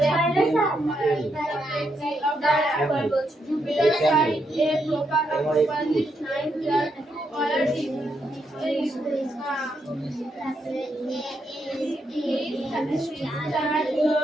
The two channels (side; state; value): both; normal; correlation 0.80